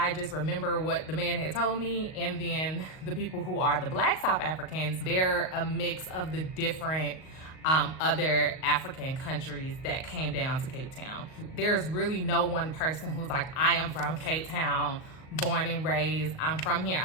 just remember what the man had told me. And then the people who are the Black South Africans, they're a mix of the different other African countries that came down to Cape Town. There's really no one person who's like, I am from Cape Town, born and raised, I'm from here.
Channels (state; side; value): late; right; 38 ms